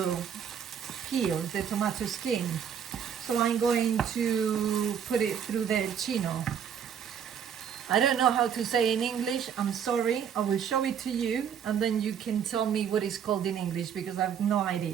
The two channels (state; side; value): quieter; left; 8.0 dB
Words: peel, the tomato skin. So I'm going to put it through the chino. I don't know how to say in English, I'm sorry. I will show it to you and then you can tell me what it's called in English because I have no